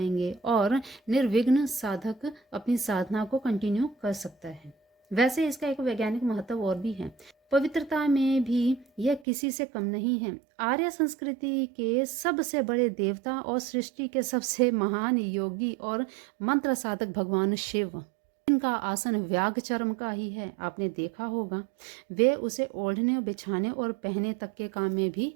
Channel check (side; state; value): left; drops out; at 9.2 s